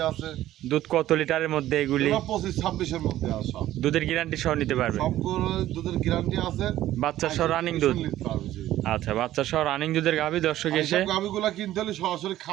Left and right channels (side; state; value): left; quieter; 13.8 dB